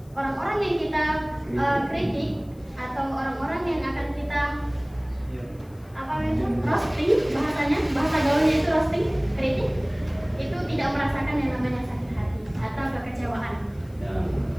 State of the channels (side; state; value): left; noise; hiss, 30 dB below the sound